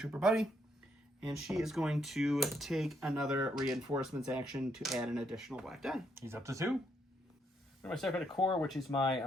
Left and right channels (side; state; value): both; normal; correlation 0.74